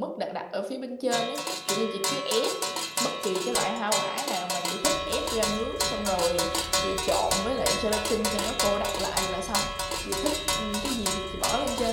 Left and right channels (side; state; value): both; identical; correlation 1.00